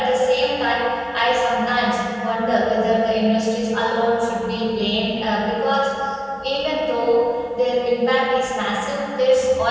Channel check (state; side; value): identical; both; correlation 1.00